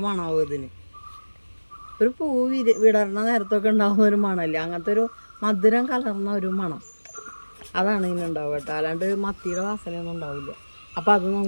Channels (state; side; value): inverted; both; correlation -1.00